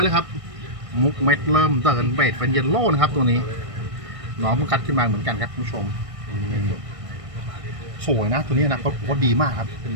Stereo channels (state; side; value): late; left; 1.6 ms